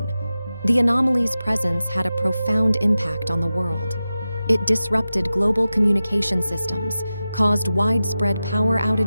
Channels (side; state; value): both; inverted; correlation -0.94